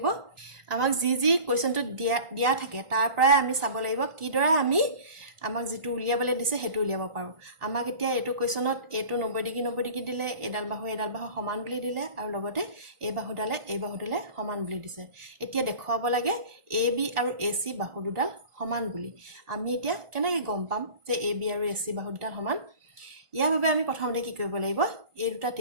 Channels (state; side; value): late; left; 1.4 ms